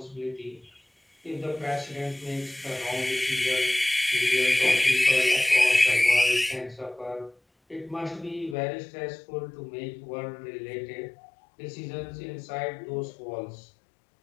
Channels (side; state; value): right; drops out; at 8.6 s